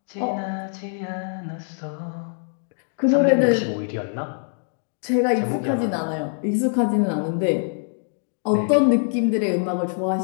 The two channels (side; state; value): right; silent; 63 dB below the other